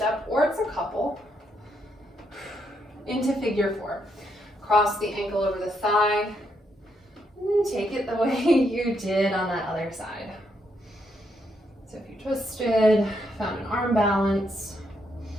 or it's a couple. Into figure four. Cross the ankle over the thigh. And then take it the way you did on that other side. So if you twisted, found an arm balance.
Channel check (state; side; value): normal; both; correlation 0.77